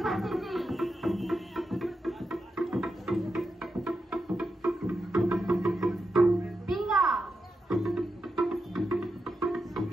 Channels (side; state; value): both; normal; correlation 0.87